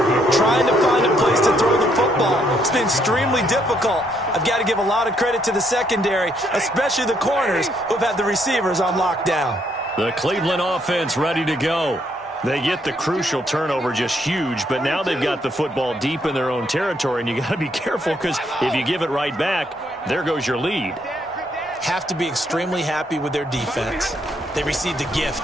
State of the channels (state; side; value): normal; both; correlation 0.72